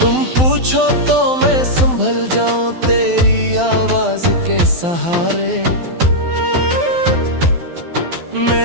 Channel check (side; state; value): left; late; 12 ms